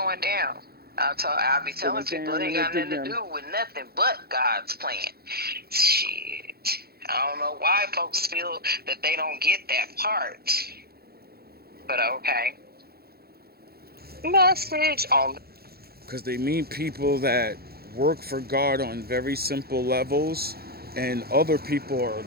down. I'll be telling people it ain't got nothing to do with nothing but God's plan. Shit. I don't know why folks feel that they don't get that part. But okay. Message on. Because they meet people that work for God on very simple levels, and other people are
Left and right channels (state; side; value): late; left; 0.45 ms